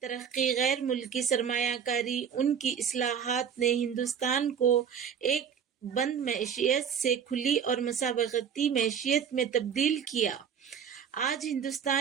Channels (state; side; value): quieter; left; 7.7 dB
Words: ترقی، غیر ملکی سرمایہ کاری، ان کی اصلاحات نے ہندوستان کو ایک بند معیشت سے کھلی اور مسابقتی معیشت میں تبدیل کیا۔ آج